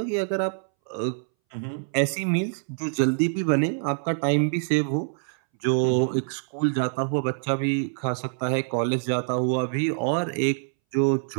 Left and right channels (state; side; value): silent; left; 61 dB below the other